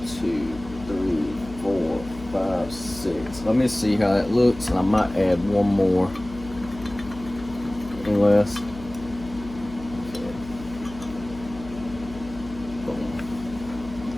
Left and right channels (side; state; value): left; noise; hum, 15 dB below the sound